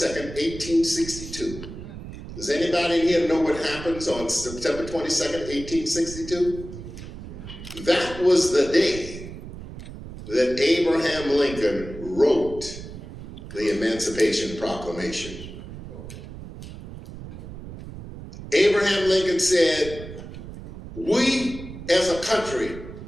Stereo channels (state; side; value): noise; right; rumble, 12 dB below the sound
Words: 1862. Does anybody in here know what happens on September 22nd, 1862? That was the day that Abraham Lincoln wrote the Emancipation Proclamation. Abraham Lincoln said, "We as a country